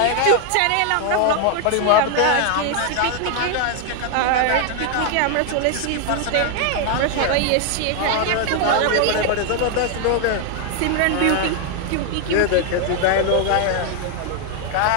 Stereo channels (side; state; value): both; different; correlation 0.00